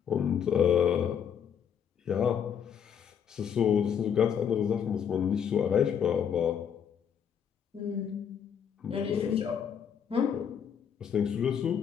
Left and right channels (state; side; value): quieter; right; 8.0 dB